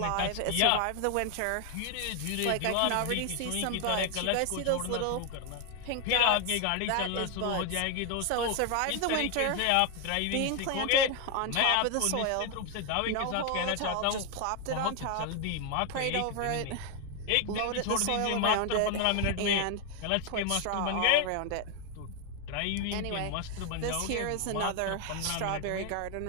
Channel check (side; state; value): both; different; correlation 0.01